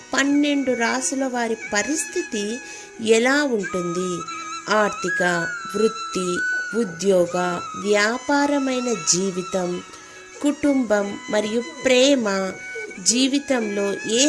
12 రాశుల వారి పరిస్థితి ఎలా ఉంటుంది, ఆర్థిక, వృత్తి, ఉద్యోగ, వ్యాపారమైన జీవితం, కుటుంబం మరియు ప్రేమ జీవితంలో ఏ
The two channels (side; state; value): both; identical; correlation 1.00